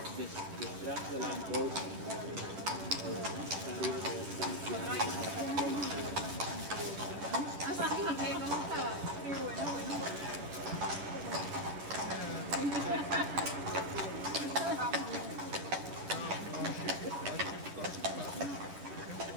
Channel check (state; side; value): late; left; 10 ms